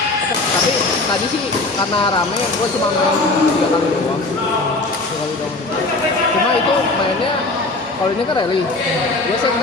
Tapi tadi sih karena rame, gue cuma main 3 kali doang. Cuma itu mainnya, kalau ini kan rally, dia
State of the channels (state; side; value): quieter; right; 3.1 dB